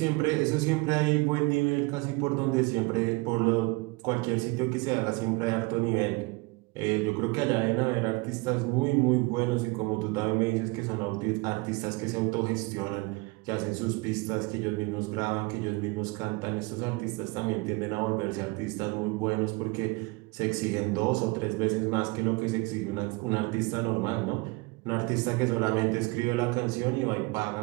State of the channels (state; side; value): quieter; left; 25.6 dB